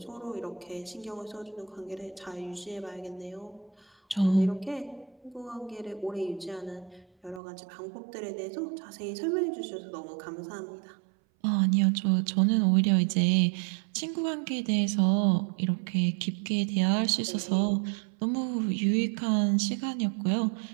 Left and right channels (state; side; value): drops out; left; at 7.4 s